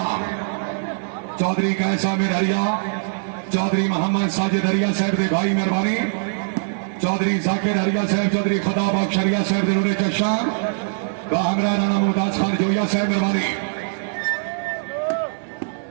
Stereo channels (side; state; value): left; silent; digital silence